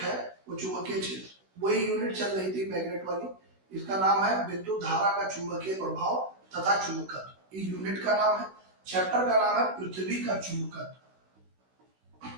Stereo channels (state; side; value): late; left; 16 ms